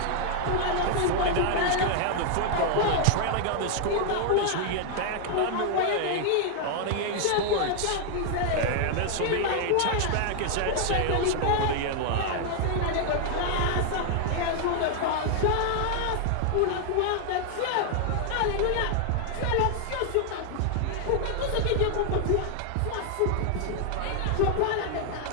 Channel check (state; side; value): different; both; correlation 0.00